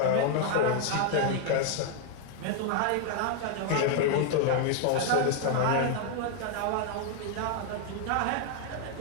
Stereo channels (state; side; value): different; both; correlation 0.00